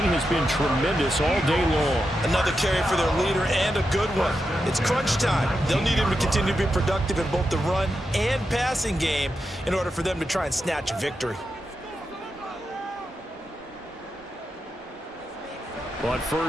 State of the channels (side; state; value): both; normal; correlation 0.87